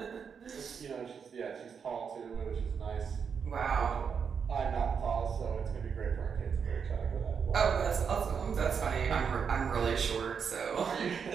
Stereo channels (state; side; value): quieter; left; 6.6 dB